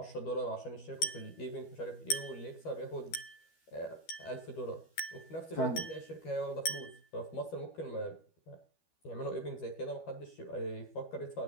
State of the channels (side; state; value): right; late; 12 ms